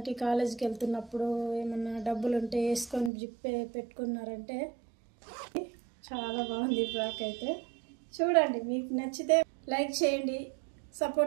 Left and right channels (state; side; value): drops out; left; at 3.1 s